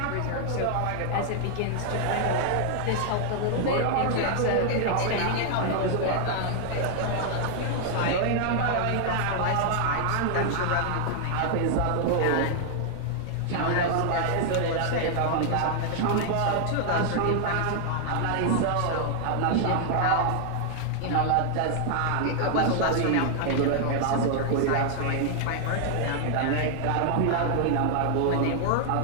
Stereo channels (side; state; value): both; different; correlation 0.00